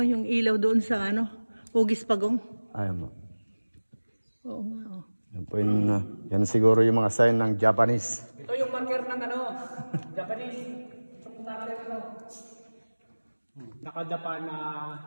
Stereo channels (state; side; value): inverted; both; correlation -1.00